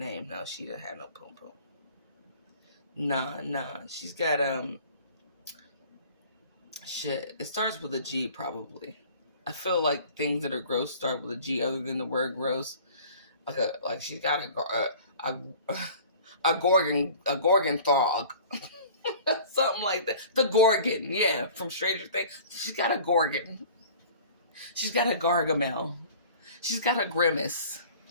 No, she doesn't have no poom poom. Nah. She's got shit. It starts with a G probably. I feel like things that are gross start with a G other than the word gross. Like she's got a gorgon frog. Something like that. The Gorgon, yeah, from Stranger Things. She's got a Gorgon. She's got a Gargamel. She's got a Grimace.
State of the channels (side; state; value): both; inverted; correlation -0.46